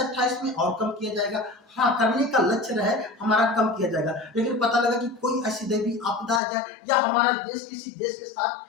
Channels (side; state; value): right; drops out; at 6.4 s